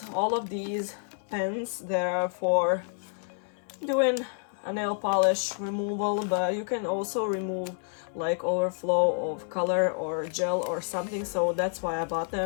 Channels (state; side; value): silent; right; 59 dB below the other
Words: all of these pens that are for doing a nail polish removal, but you can also remove like overflow of color or gel or something, so that's why I bought